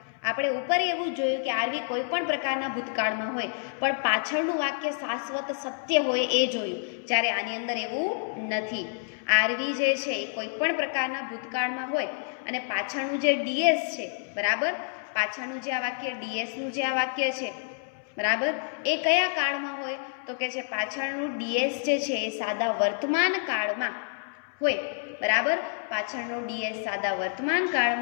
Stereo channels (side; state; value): right; silent; 59 dB below the other